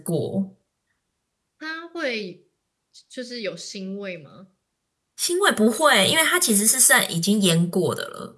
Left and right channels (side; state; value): both; identical; correlation 1.00